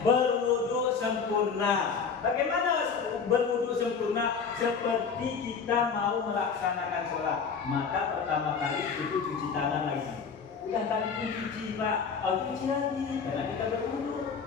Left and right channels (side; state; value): right; quieter; 5.9 dB